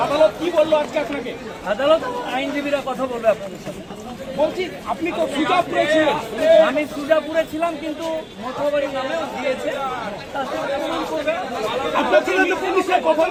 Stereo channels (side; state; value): both; identical; correlation 1.00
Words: আদালত কি বললো আজকে আপনাকে? আদালত আইনজীবীরা কথা বলবে আপনাদের সাথে। বলছি আপনি তো সুজাপুরে ছিলেন। আমি সুজাপুরে ছিলাম, কিন্তু মঠবাড়ি নামেও দিয়েছে। তার সাথে প্রমাণ করবে। আপনার ছিল তো পুলিশের কথা